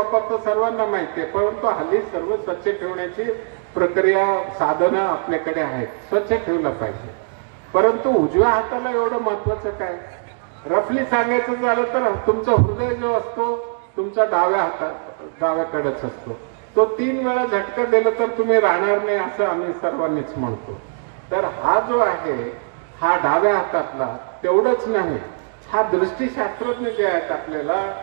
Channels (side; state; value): left; silent; digital silence